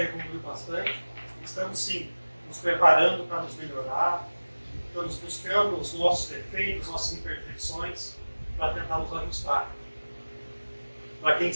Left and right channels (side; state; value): both; inverted; correlation -1.00